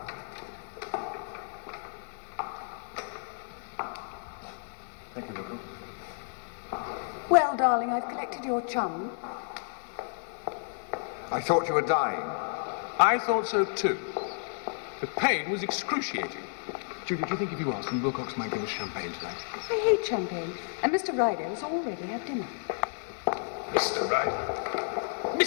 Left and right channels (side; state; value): right; silent; digital silence